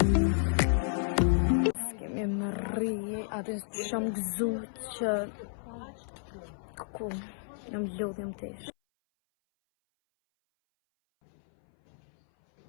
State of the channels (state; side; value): silent; right; 57 dB below the other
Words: Atë që jam gëzuar që ku jam lodhjem tesh.